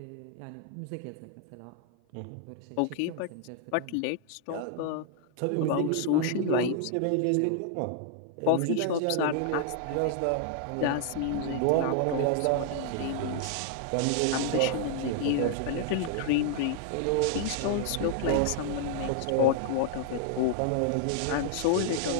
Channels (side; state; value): both; different; correlation 0.00